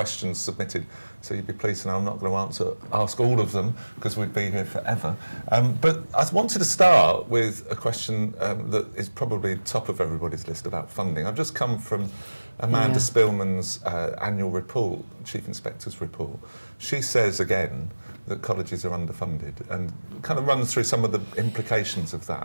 submitted, so you'd be pleased to know I'm not going to ask all of them because we'd be here forever. But I wanted to start with a question that is probably top of everybody's list about funding. I've just come from Amanda Spillman's annual report, Chief Inspector's report. She says again that colleges are underfunded and kind of runs through some of the implications of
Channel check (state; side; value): inverted; both; correlation -1.00